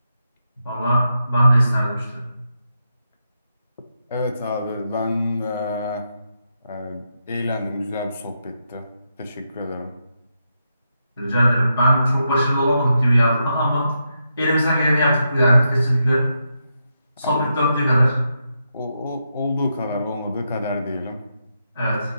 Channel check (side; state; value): both; inverted; correlation -0.84